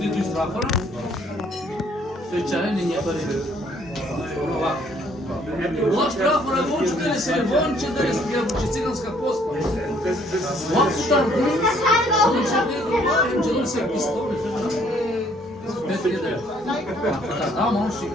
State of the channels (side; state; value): both; normal; correlation 0.63